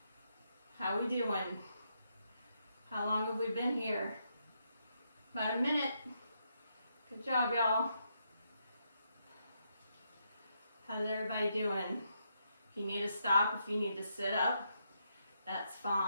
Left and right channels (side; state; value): both; inverted; correlation -0.79